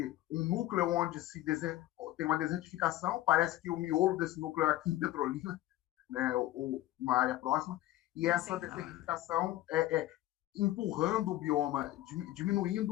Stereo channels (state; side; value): quieter; right; 15.4 dB